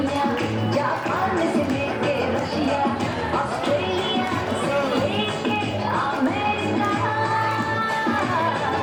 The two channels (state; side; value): identical; both; correlation 1.00